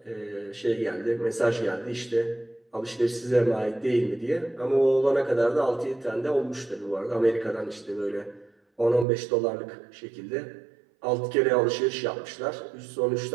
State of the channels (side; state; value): left; drops out; at 9.1 s